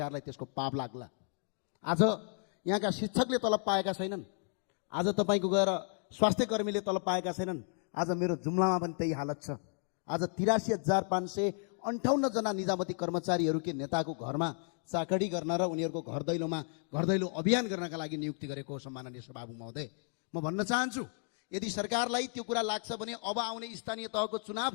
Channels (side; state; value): right; silent; 55 dB below the other